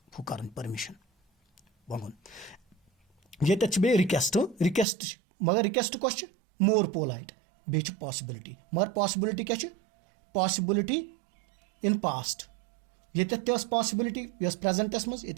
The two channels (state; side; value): drops out; left; at 4.9 s